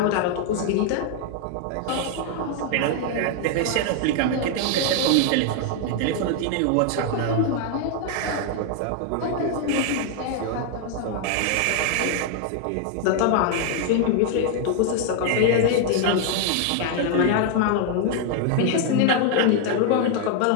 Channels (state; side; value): different; both; correlation 0.00